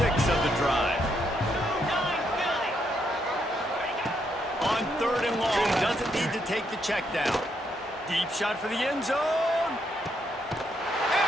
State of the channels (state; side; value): normal; both; correlation 0.76